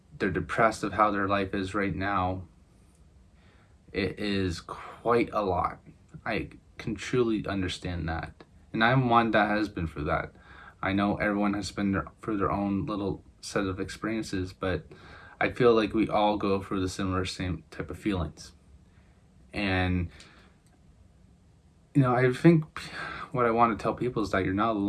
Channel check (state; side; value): identical; both; correlation 1.00